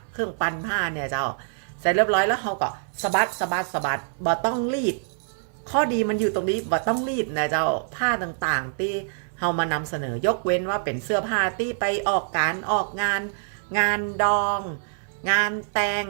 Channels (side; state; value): left; silent; 62 dB below the other